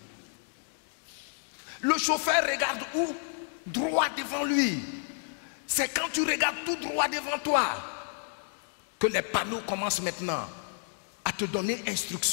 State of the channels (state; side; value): silent; right; 57 dB below the other